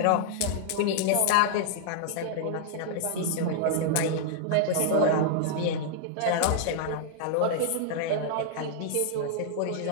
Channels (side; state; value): both; different; correlation -0.01